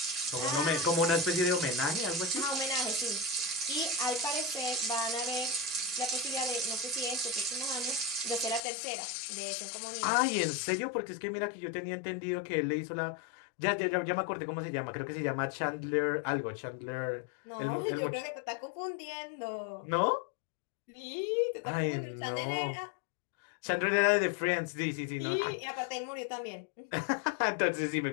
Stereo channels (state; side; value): drops out; right; at 8.6 s